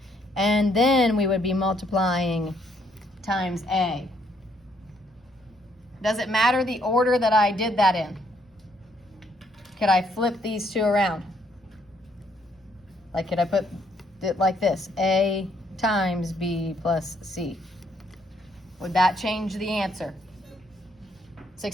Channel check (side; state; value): both; normal; correlation 0.70